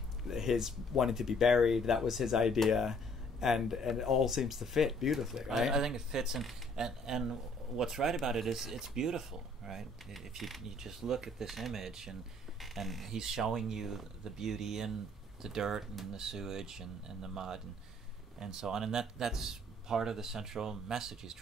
his wanting to be buried, that was his idea, and it all seems to fit beautifully, right? I think it fits, and what's right about it is it's beautiful, right? If you just look at this image, and he's showing you the beauty in the dirt and the sewage and the mud and so on, and that's part of the central message he's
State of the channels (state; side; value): normal; both; correlation 0.61